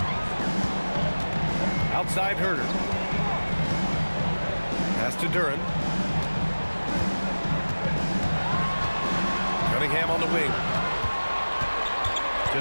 Outside Herter. Pass to Duren. Cunningham on the wing.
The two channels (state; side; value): inverted; both; correlation -1.00